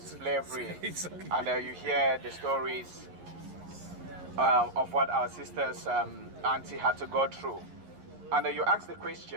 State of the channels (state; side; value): late; left; 11 ms